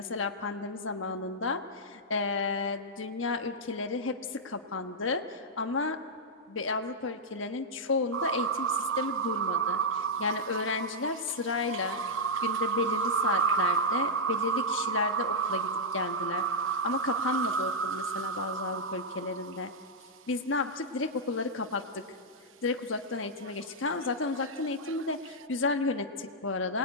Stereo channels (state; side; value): normal; both; correlation -0.05